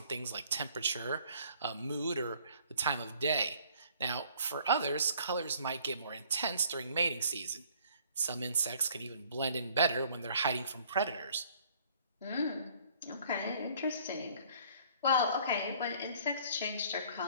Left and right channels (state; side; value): inverted; both; correlation -0.57